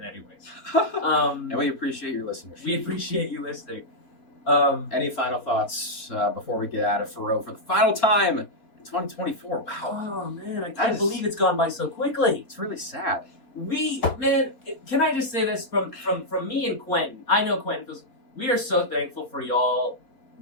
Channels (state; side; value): late; right; 3.5 ms